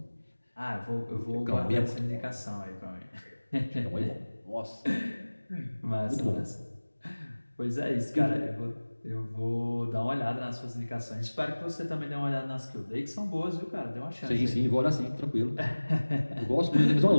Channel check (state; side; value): inverted; both; correlation -1.00